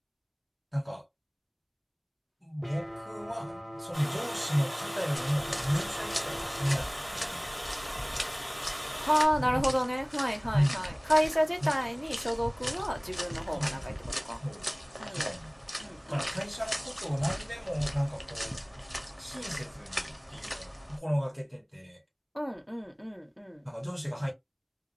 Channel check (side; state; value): both; identical; correlation 1.00